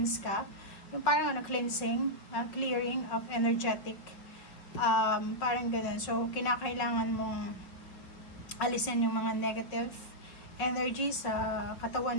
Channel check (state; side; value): late; right; 5.4 ms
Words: ka. Yung parang cleansing, clearing of energetic. Parang ganun. So, kinakailangan mong alisin yung mga negative energy sa